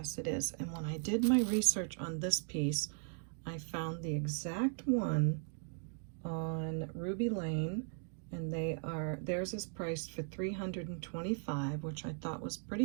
it is. And when I did my research on this piece, I found the exact one on Ruby Lane, and theirs is priced for $325, which I thought was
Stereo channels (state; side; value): silent; left; 53 dB below the other